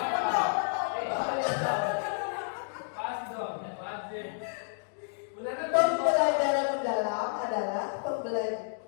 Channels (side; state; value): right; silent; digital silence